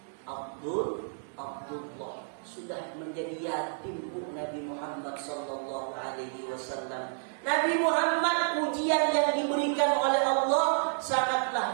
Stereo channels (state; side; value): silent; left; 57 dB below the other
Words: Abdullah, sudah menjadi yatim Bu Nabi Muhammad sallallahu alaihi wasallam. Nabi Muhammad, ujian yang diberikan oleh Allah